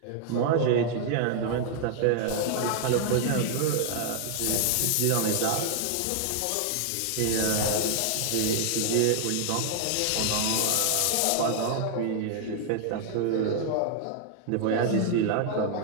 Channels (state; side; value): different; both; correlation 0.00